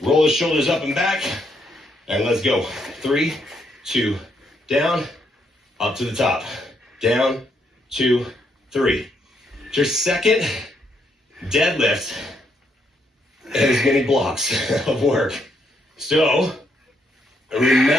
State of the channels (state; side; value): normal; both; correlation 0.75